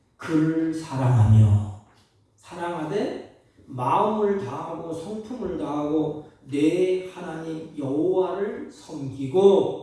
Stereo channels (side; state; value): both; identical; correlation 1.00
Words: 그를 사랑하되 마음을 다하고 성품을 다하고 내 하나님 여호와를